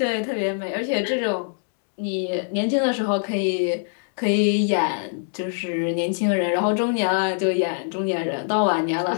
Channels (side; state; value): right; silent; digital silence